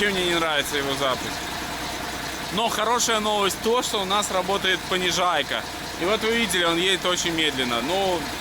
мне не нравится его запуск. Но хорошая новость то, что у нас работает понижайка. И вот вы видели, он едет очень медленно. Но,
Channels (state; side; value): identical; both; correlation 1.00